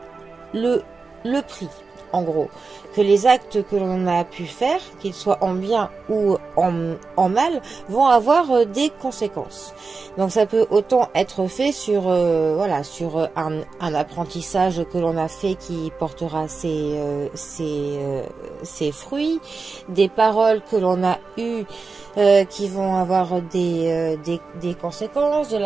le prix, en gros, que les actes que l'on a pu faire, qu'ils soient en bien ou en mal, vont avoir des conséquences. Donc ça peut autant être fait sur sur un apprentissage que l'on a fait qui portera ses fruits, des paroles que l'on a eues qui vont avoir des conséquences, de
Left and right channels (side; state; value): left; quieter; 4.3 dB